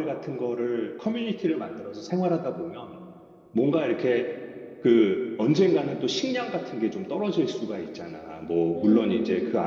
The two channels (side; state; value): both; identical; correlation 1.00